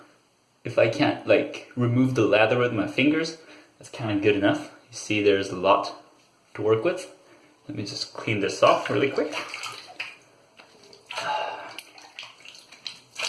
if I can't like remove the lather with my fingers, that's kind of good enough. You see there's a lot to work with. Let me just clean this off really quick.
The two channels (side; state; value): both; identical; correlation 1.00